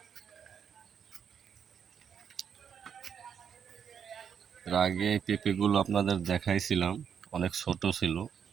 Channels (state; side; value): quieter; left; 7.6 dB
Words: এর আগে পেঁপেগুলো আপনাদের দেখাইছিলাম, অনেক ছোট ছিল,